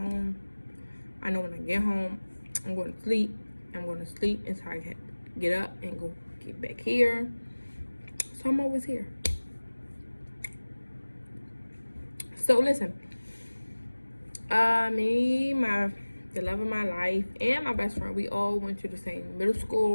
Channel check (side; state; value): both; inverted; correlation -1.00